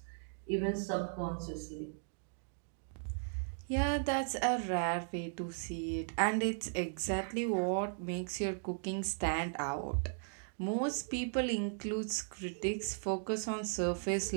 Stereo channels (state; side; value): silent; left; digital silence